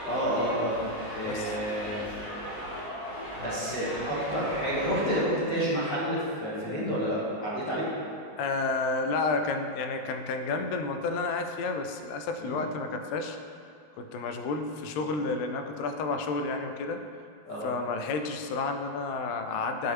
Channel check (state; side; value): late; right; 20 ms